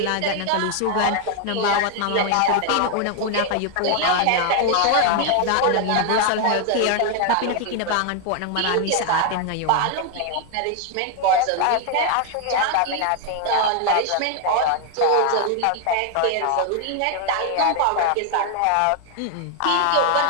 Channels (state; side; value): different; both; correlation 0.00